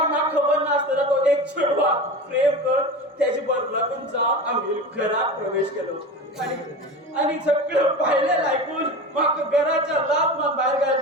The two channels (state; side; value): normal; both; correlation 0.29